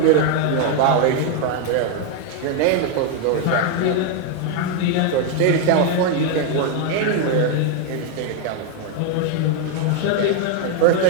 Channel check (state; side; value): different; both; correlation 0.01